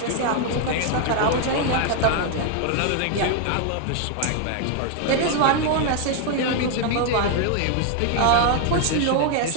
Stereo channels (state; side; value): different; both; correlation 0.01